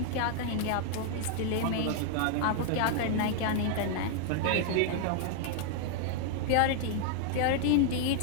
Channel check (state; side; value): different; both; correlation 0.00